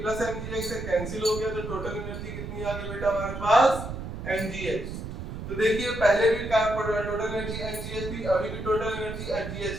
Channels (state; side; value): noise; right; rumble, 7 dB below the sound